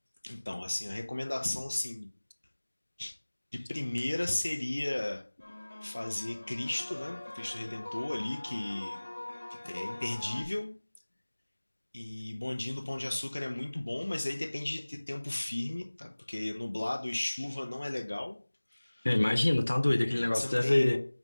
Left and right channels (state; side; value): inverted; both; correlation -1.00